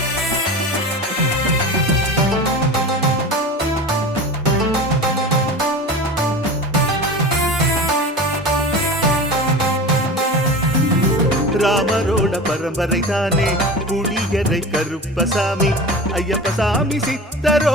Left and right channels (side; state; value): both; normal; correlation 0.33